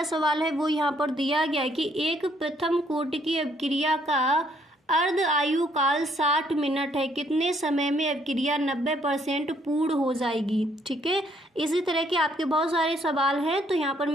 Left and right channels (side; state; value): both; normal; correlation 0.68